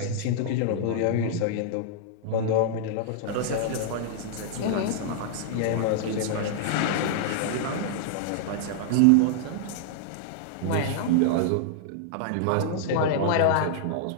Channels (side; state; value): both; different; correlation -0.01